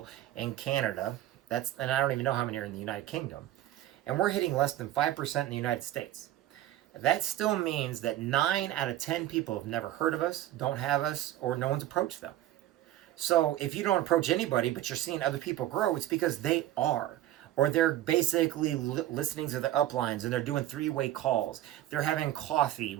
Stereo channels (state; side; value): quieter; left; 13.6 dB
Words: in Canada. And I don't even know how many are in the United Kingdom. And we're hitting less than 5% in the United States. That still means that 9 out of 10 people have never heard of us, don't have us, or no one's approached them. So if you don't approach anybody, but you're seeing other people grow, it's because they are. Or they're basically listening to the uplines, and they're doing three-way calls. They're having coffee